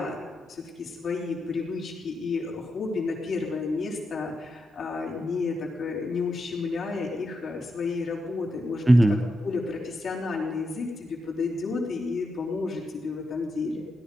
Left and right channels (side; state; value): both; normal; correlation 0.85